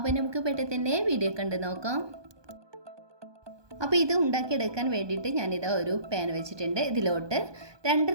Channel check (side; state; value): left; late; 1.2 ms